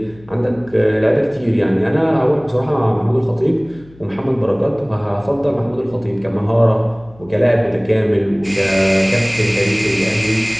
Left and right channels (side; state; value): left; noise; hum, 24 dB below the sound